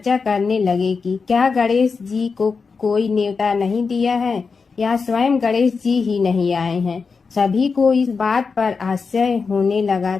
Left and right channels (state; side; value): quieter; right; 5.0 dB